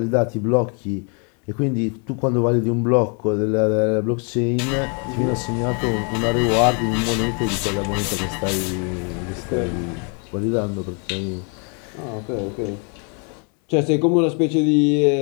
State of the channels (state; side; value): quieter; right; 37.7 dB